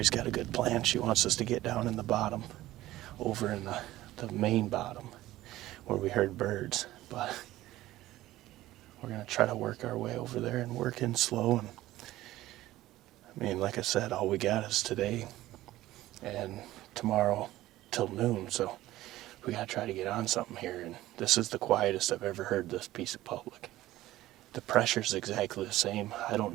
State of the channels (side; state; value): left; quieter; 15.9 dB